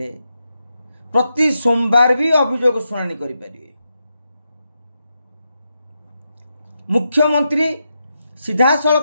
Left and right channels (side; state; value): both; inverted; correlation -0.85